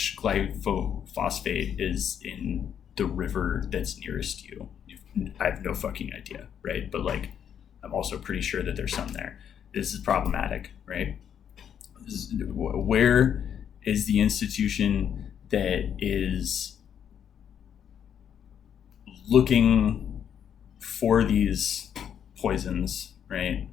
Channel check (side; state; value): right; quieter; 8.7 dB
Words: glyphosate is in the river that's nearest you. I have no fucking idea, right? But like, I'm also pretty sure that there's some there. This is problematic, right? Where is the institution that is looking for these poisons, right?